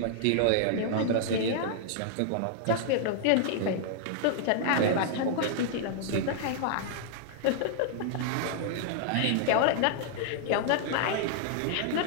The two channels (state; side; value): different; both; correlation -0.01